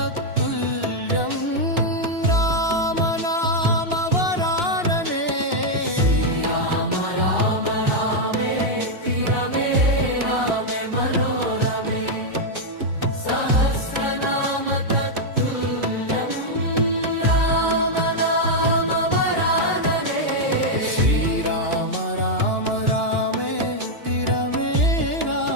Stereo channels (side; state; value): left; late; 2.9 ms